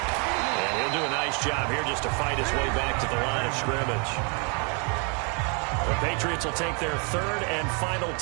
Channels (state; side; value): quieter; left; 35.9 dB